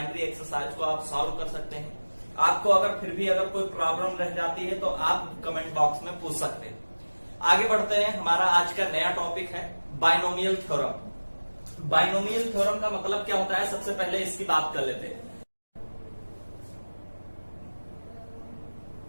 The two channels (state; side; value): inverted; both; correlation -1.00